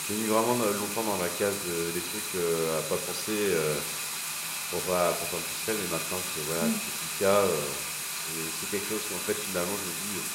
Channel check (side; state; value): both; identical; correlation 1.00